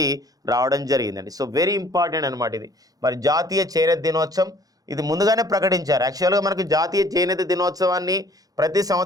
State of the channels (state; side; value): late; left; 0.18 ms